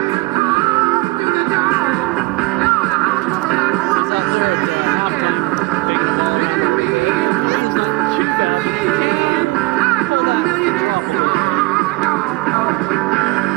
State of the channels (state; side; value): quieter; left; 22.9 dB